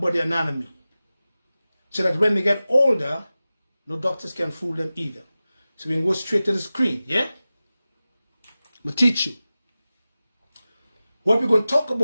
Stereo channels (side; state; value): both; inverted; correlation -0.96